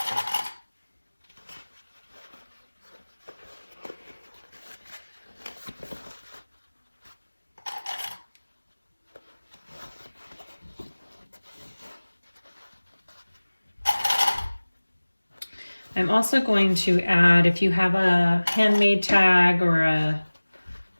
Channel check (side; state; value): both; inverted; correlation -1.00